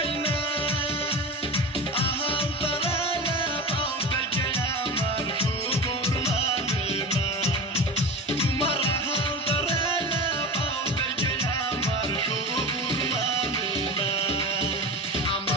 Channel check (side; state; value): both; normal; correlation 0.29